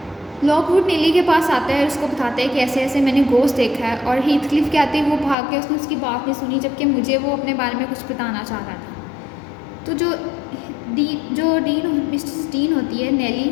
लॉकवुड नेली के पास आता है, उसको बताता है कि ऐसे ऐसे मैंने गोस्ट देखा है, और हीथक्लिफ के आते ही वो भाग के उसने उसकी बात नहीं सुनी, जबकि मुझे वो अपने बारे में कुछ बताना चाह रहा था। तो जो मिसेस डीन होती है नेली,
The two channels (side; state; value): right; drops out; at 5.4 s